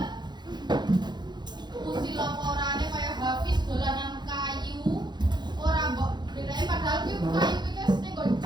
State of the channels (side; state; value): left; late; 0.21 ms